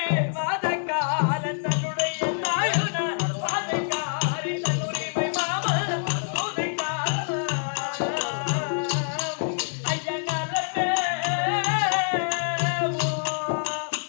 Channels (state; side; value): silent; right; 61 dB below the other